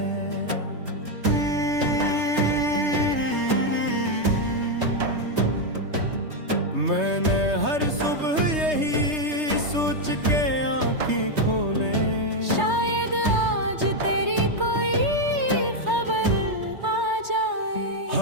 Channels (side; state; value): left; late; 3.3 ms